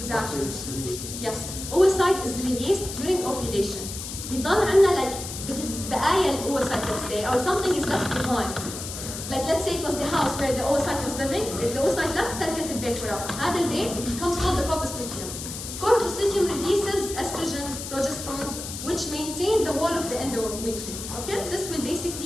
After it's released. Yes. Oocyte is released during ovulation. بيضل عندنا like بقايا الoocyte, let's say, or something is left behind. Like let's say it was the house where the oocyte was living. If the oocyte left, تركت البيت وراه. هذا البيت becomes called the corpus luteum. Corpus luteum releases estrogens, progesterones, which maintain the wall of the endometrium. Okay? This will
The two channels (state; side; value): noise; left; hiss, 8 dB below the sound